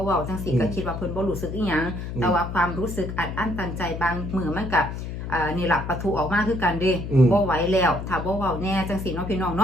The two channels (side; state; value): left; noise; hum, 6 dB below the sound